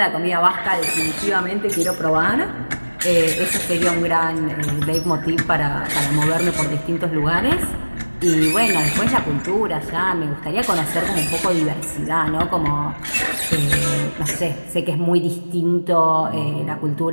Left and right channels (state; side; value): inverted; both; correlation -1.00